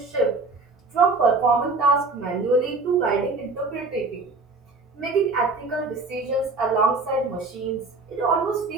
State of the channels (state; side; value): quieter; left; 3.6 dB